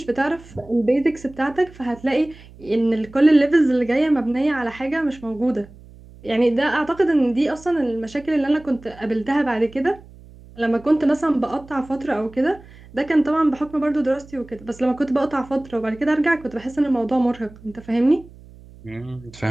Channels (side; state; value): right; noise; hum, 21 dB below the sound